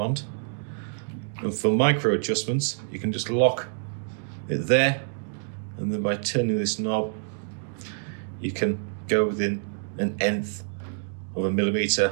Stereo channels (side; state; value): left; silent; digital silence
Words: And for micro adjustments, you can just lock it there, and then by turning this knob, you can go within an nth of a